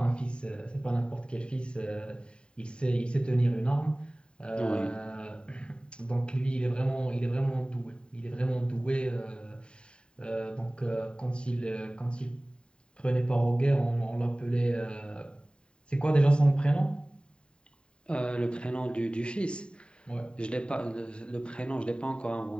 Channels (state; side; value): late; right; 0.052 ms